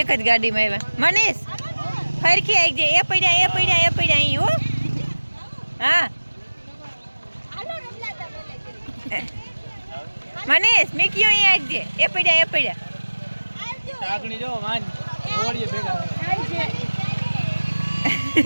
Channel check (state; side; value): inverted; both; correlation -1.00